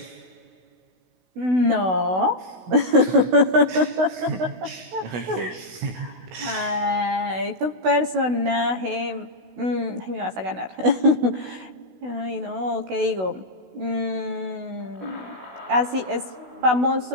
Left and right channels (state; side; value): late; left; 16 ms